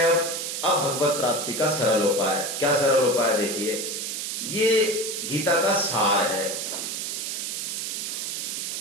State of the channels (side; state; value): right; noise; hiss, 3 dB below the sound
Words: अब भगवत प्राप्ति का सरल उपाय। क्या सरल उपाय? देखिए, ये गीता का सार है।